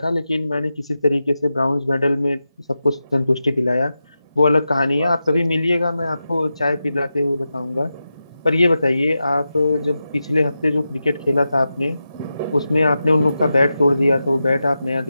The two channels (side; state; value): both; inverted; correlation -0.91